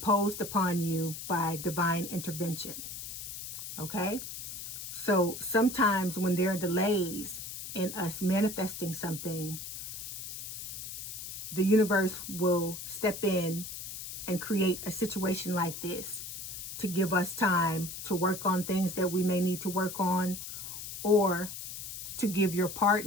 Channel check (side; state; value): left; noise; hiss, 8 dB below the sound